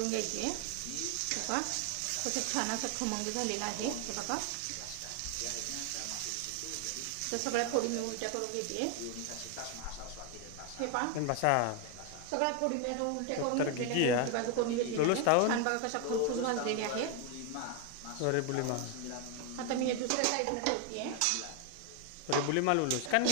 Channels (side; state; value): both; different; correlation 0.01